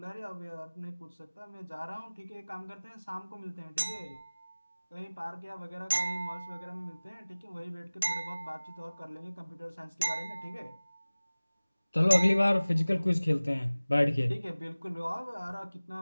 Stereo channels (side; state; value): both; inverted; correlation -0.99